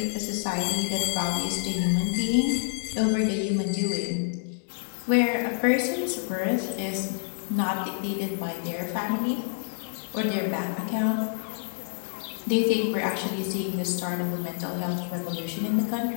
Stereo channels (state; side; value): silent; right; digital silence